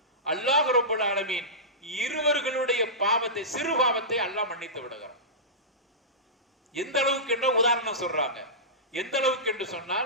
அல்லாஹ் ரப்பல் ஆலமீன் இருவர்களுடைய பாவத்தை, சிறு பாவத்தை அல்லாஹ் மன்னித்து விடுகிறார். எந்த அளவுக்கு என்ற உதாரணம் சொல்றாங்க. எந்த அளவுக்கு என்று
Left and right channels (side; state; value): both; normal; correlation -0.19